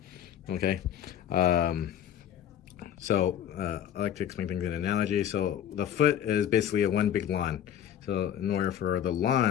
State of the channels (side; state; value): right; quieter; 10.0 dB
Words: Okay. So I like to explain things in an analogy. So the foot is basically one big lawn. So in order for the